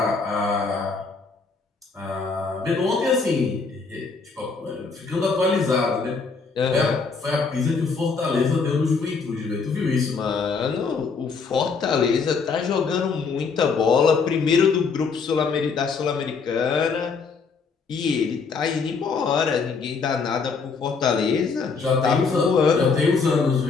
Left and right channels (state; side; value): quieter; right; 4.9 dB